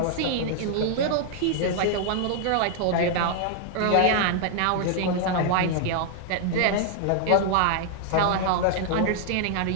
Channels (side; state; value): both; different; correlation 0.00